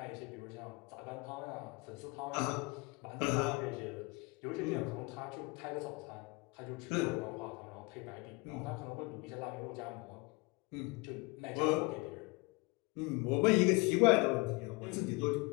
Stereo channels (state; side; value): quieter; right; 26.6 dB